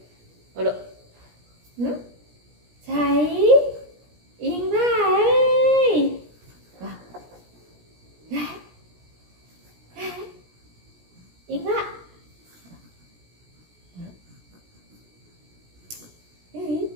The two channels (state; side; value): late; left; 17 ms